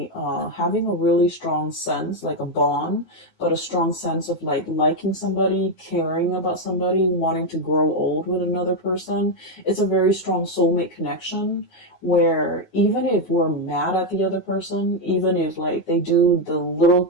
having a really strong sense, like a bond, but a strong sense of like liking somebody, caring about somebody, wanting to grow old with another person. It's a very strong soulmate connection where even if we're mad at the other person, even if like they do the little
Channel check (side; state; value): right; late; 9.5 ms